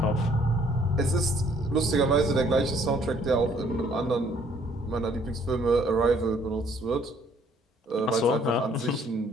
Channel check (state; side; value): normal; both; correlation 0.62